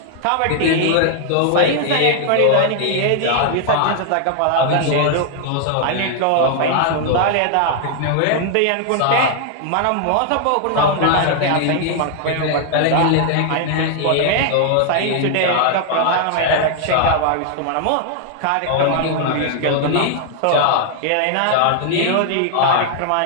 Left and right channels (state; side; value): different; both; correlation 0.00